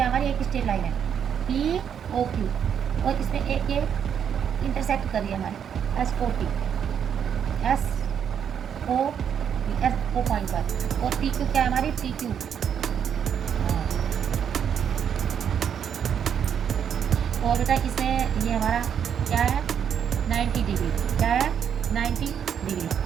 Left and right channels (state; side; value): quieter; left; 8.2 dB